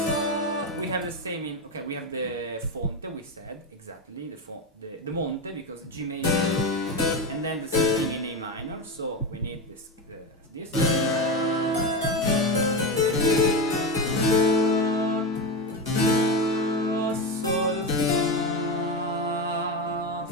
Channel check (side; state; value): both; normal; correlation 0.16